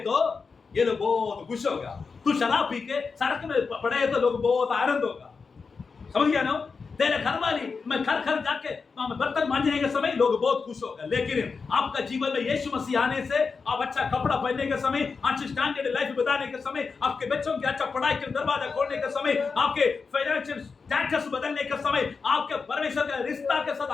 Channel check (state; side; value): quieter; right; 4.9 dB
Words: तो ये लोग बहुत खुश होगा। तू शराब पी के सड़क में पड़े तो लोग बहुत आनंद होगा। समझ गया ना? तेरे घर वाली मैं घर जाके बर्तन मांजने के समय लोग बहुत खुश होगा। लेकिन आपका जीवन में यीशु मसीह आने से, आप अच्छा कपड़ा पहनने के समय, अच्छी स्टैंडर्ड लाइफ बताने के समय, आपके बच्चों के अच्छा पढ़ाई के दरवाजा खोलने के समय, आपके फाइनेंशियल स्टेटस बदलने के समय, आपके परमेश्वर का रिश्ता के साथ